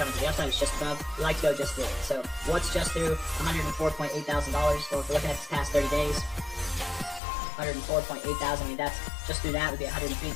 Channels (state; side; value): drops out; right; at 7.2 s